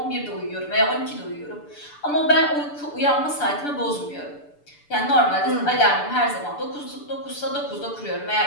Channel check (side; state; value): right; late; 6.8 ms